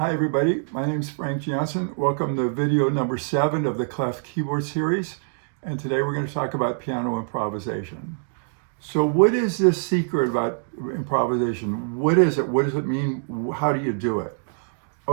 everybody, my name is Frank Jansen. Welcome to video number 7 of the Clef Keyboard series. And today we're going to talk about piano improvisation. So what is this secret about improvisation? What is it? What does it mean? How do you do it?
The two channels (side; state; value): left; silent; digital silence